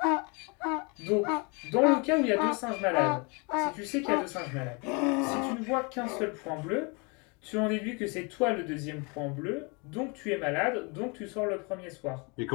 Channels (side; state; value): right; quieter; 31.6 dB